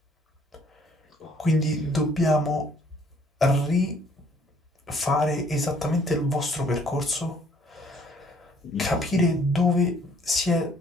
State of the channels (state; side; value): normal; both; correlation 0.61